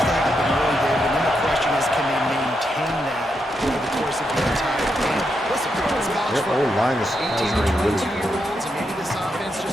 to happen early, David. And then the question is, can they maintain that over the course of the entire game? Listen, it's college Their football. whole line is 18 to really 22-year-olds, and maybe this offense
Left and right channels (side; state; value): both; normal; correlation 0.83